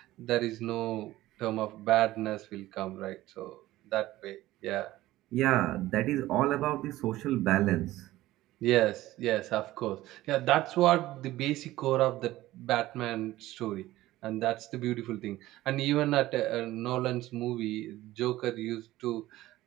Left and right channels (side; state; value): left; quieter; 16.3 dB